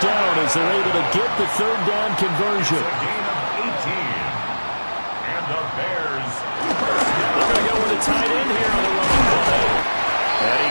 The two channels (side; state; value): both; inverted; correlation -1.00